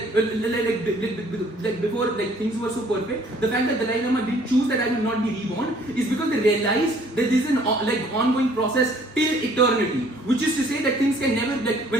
before things were so perfect, the fact that Dalai Lama didn't choose that I will not be reborn is because they realized that this is an ongoing process till eternity, which is to say that things can never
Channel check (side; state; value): both; normal; correlation 0.58